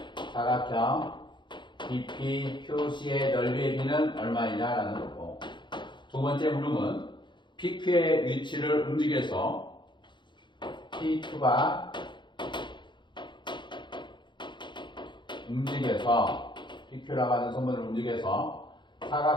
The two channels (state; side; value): late; right; 0.23 ms